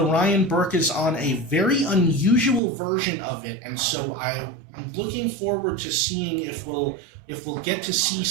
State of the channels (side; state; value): left; drops out; at 2.6 s